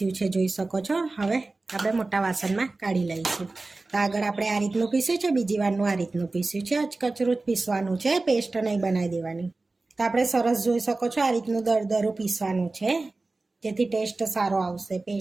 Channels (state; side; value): quieter; left; 3.3 dB